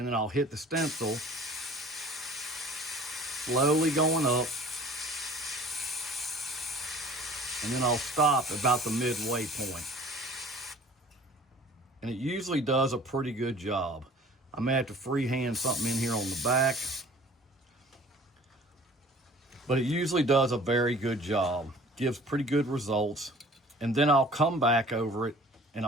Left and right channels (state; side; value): normal; both; correlation 0.48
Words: then I'll hit the stencil, slowly going up. And then I'll stop about the midway point. And it usually does a pretty good job. I may have to freehand something in here on the back. But it usually does a very good job. Gives pretty good results. And then I'll come back over it and